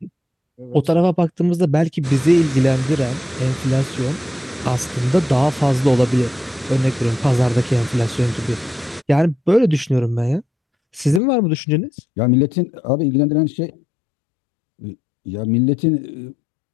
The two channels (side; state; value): right; drops out; at 11.2 s